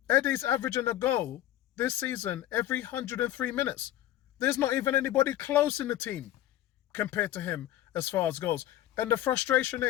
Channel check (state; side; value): quieter; right; 13.5 dB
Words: Eddie's averaging a goal this season every 103 minutes. There's not even anybody close in the team compared to him as far as goals. And the frustration